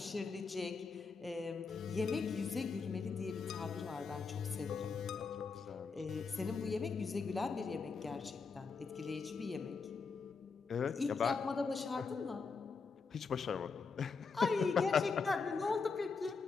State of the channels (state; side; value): quieter; right; 4.9 dB